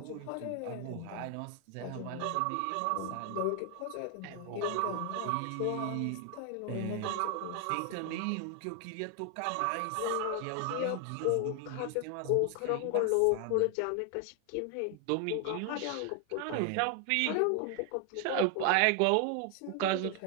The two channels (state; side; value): different; both; correlation 0.00